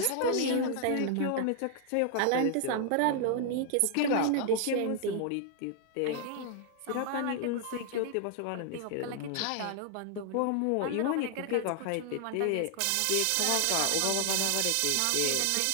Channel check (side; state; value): both; different; correlation 0.00